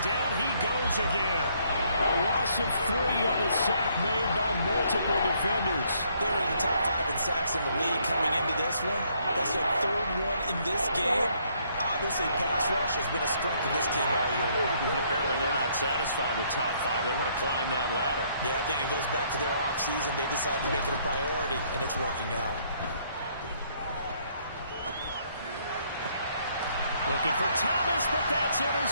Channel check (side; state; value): both; inverted; correlation -0.68